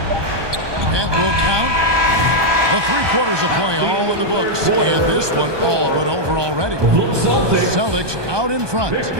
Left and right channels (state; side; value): late; left; 1.2 ms